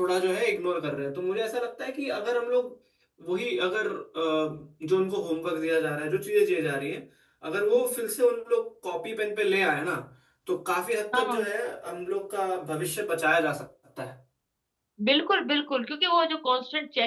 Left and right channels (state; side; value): identical; both; correlation 1.00